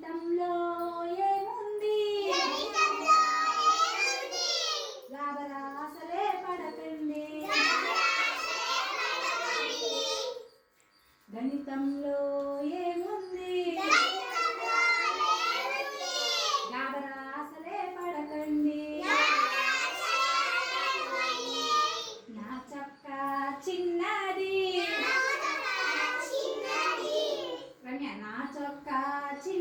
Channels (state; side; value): identical; both; correlation 1.00